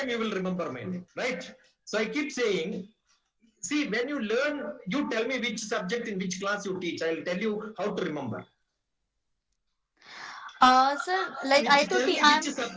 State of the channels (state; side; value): identical; both; correlation 1.00